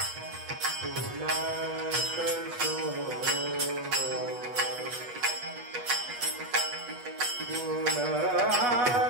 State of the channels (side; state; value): left; late; 8.2 ms